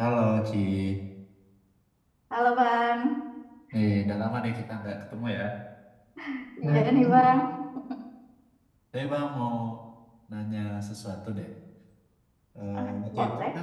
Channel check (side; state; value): both; identical; correlation 1.00